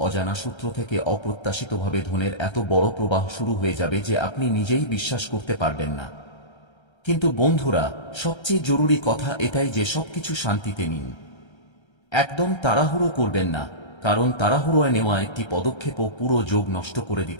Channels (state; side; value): late; right; 1.3 ms